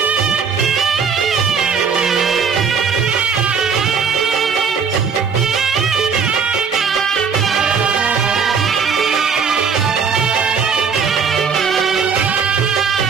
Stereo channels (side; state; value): left; quieter; 6.1 dB